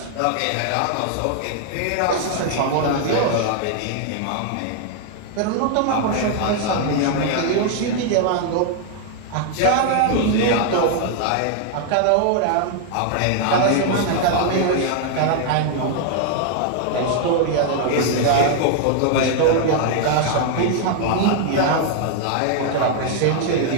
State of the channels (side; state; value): both; different; correlation 0.00